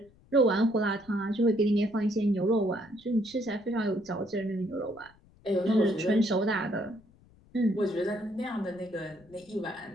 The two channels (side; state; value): left; noise; rumble, 28 dB below the sound